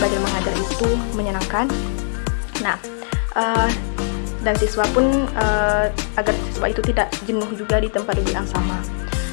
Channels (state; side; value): silent; right; 65 dB below the other